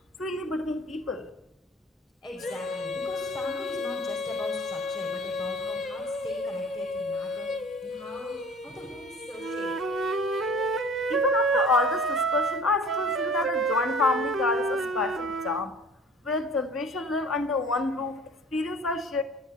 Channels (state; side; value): normal; both; correlation 0.46